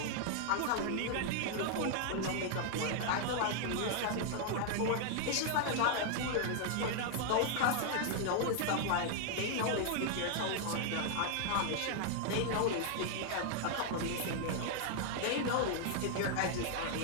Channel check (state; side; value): different; both; correlation 0.00